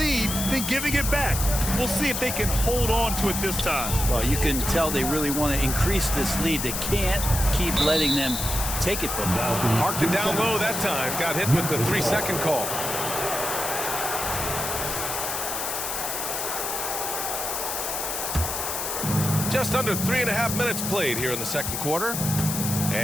then giving it back. We'll see if they can hold on to it this time. Well, you can tell they really want to increase this lead. They can't keep letting them take it from them. Parked it down low that time. Got hit with the 3-second call. Just under 3.5 minutes played here in the second quarter.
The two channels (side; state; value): left; noise; hiss, 3 dB below the sound